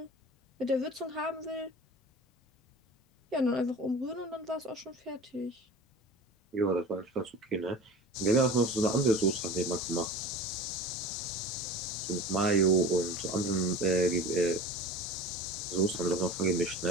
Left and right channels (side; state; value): both; normal; correlation 0.36